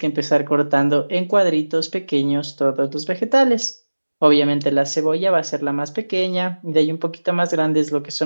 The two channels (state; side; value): inverted; both; correlation -1.00